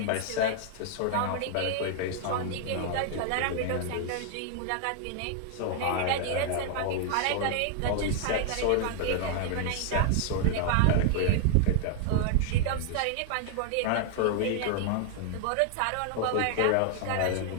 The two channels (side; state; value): both; different; correlation 0.00